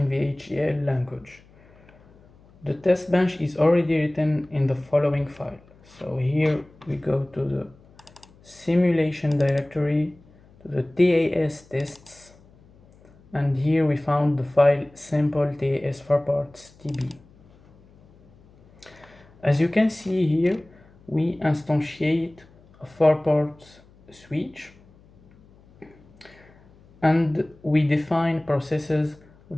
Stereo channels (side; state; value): left; noise; hum, 27 dB below the sound